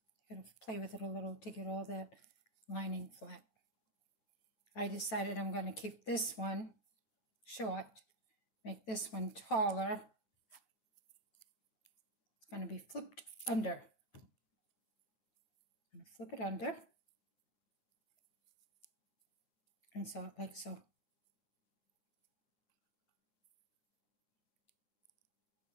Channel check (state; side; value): late; right; 9.1 ms